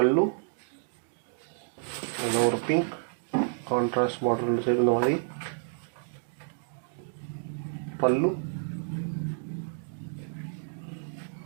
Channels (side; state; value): left; silent; digital silence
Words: and over pink contrast border சேர்ந்த மாதிரி pallu